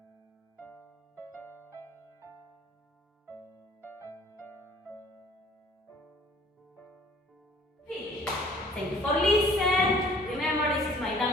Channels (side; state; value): both; normal; correlation 0.54